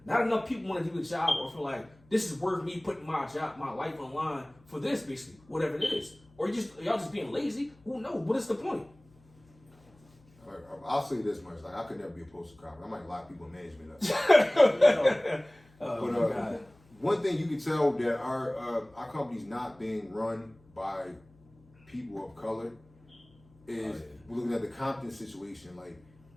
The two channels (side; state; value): left; noise; hum, 29 dB below the sound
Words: not enough people want to do the job or feel like this is worth me putting my job, my life on line for this, basically, whatever it is. Or y'all just being lazy. Who knows? What is the point? I'll say this much: like I could never be a postal cop. I might lock people in management up. But one thing you can tell that our company's not being run by people of color is we're looking at the Compton situation. Like